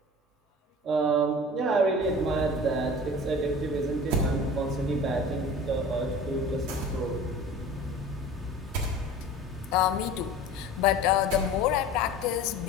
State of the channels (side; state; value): both; normal; correlation 0.39